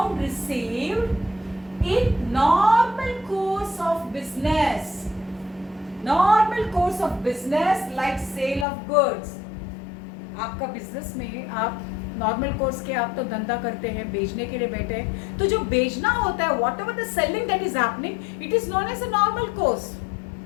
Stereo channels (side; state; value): right; drops out; at 8.7 s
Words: received in normal course of business. Normal course of business like sale of goods. आपका business में आप normal course के आप तो धंधा करते हैं, बेचने के लिए बैठे हैं, तो जो बेचना होता है whatever the selling that is happening, it is known as a normal course.